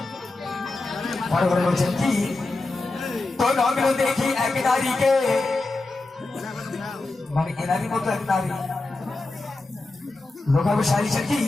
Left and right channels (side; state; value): right; quieter; 3.2 dB